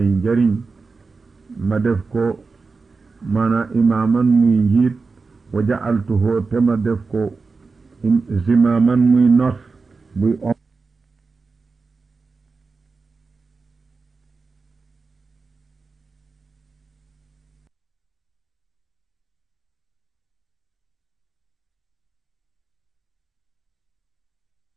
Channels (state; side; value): quieter; left; 4.3 dB